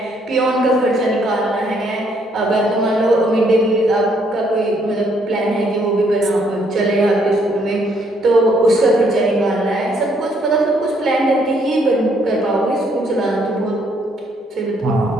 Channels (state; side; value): normal; both; correlation 0.69